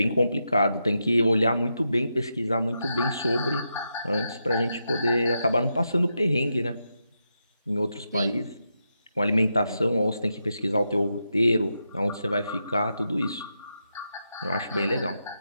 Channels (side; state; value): both; inverted; correlation -0.85